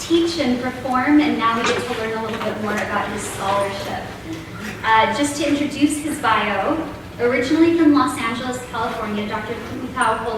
and perform, and now we get to learn a little bit more about his scholarship. Just to introduce his bio, originally from Los Angeles, California, Dr. Tuʻutau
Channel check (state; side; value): identical; both; correlation 1.00